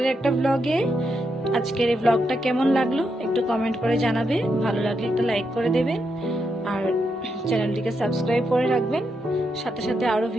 একটা ব্লগে। আজকের এই ব্লগটা কেমন লাগলো একটু কমেন্ট করে জানাবে, ভালো লাগলে একটা লাইক করে দেবেন আর চ্যানেলটিকে সাবস্ক্রাইব করে রাখবেন, সাথে সাথে আরো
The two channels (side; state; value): both; normal; correlation 0.82